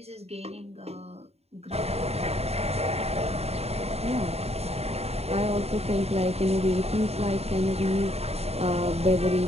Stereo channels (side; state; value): left; late; 0.30 ms